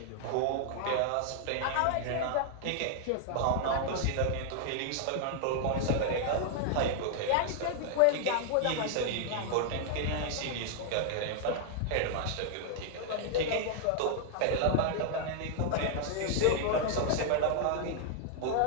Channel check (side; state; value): both; different; correlation -0.01